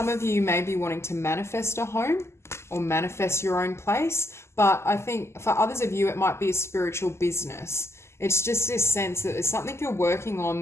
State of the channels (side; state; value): right; late; 0.13 ms